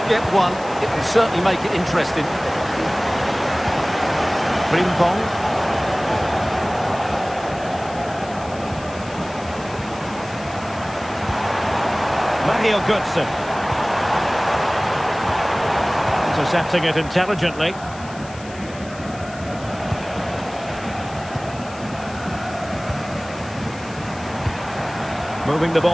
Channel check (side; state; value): left; noise; hiss, 19 dB below the sound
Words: get one, it will certainly make it interesting. Frimpong. Mario Götze. Intercepting it intelligently. Moving the